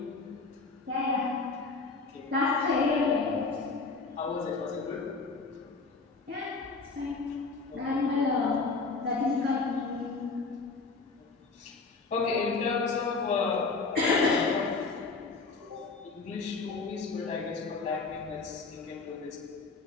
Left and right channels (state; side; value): quieter; right; 4.1 dB